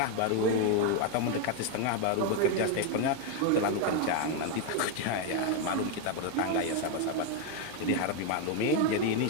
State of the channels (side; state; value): both; different; correlation 0.01